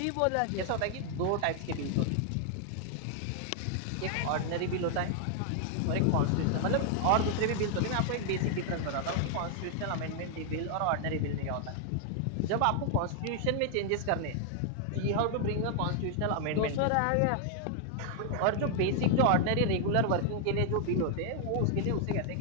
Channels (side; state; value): both; different; correlation 0.00